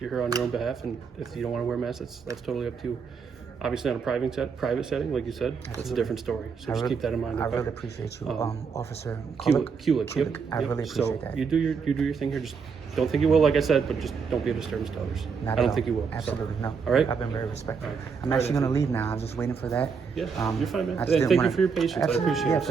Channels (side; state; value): left; quieter; 5.8 dB